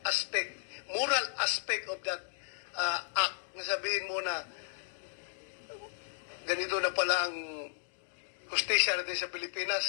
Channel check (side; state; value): right; silent; digital silence